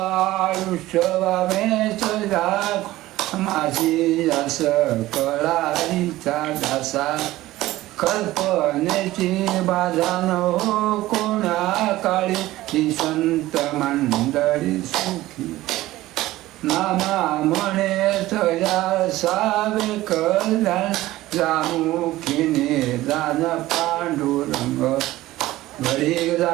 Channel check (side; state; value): left; quieter; 16.7 dB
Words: वामेच जाग माझी अस कळारीचा दासा कल्पनेची बाधा न हो कोणा काळी ही संत मंडळी सुखी नामा म्हणे तया सावे कल्याण जामुखीने दान पांडुरंग घडी